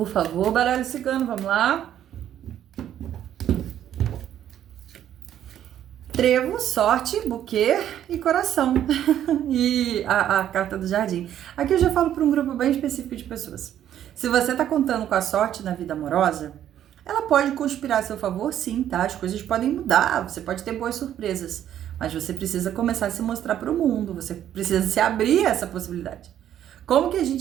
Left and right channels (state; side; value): quieter; left; 10.9 dB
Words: favor, baralho cigano, vamos lá. Trevo, sorte, buquê e coração. E a carta do jardim. Aqui eu já falo para um grupo bem específico de pessoas. Se você tá contando com a sorte na vida amorosa, ela pode conspirar a seu favor, sim, tá? As coisas podem mudar, você pode ter boas surpresas. Mas você precisa começar a se mostrar para o mundo, você precisa se abrir a essa possibilidade. Como que a